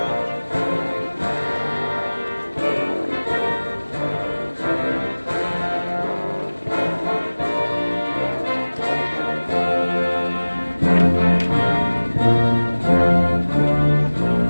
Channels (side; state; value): both; inverted; correlation -1.00